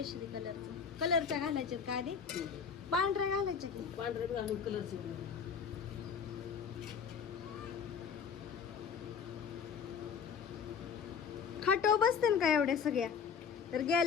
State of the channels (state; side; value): quieter; right; 6.5 dB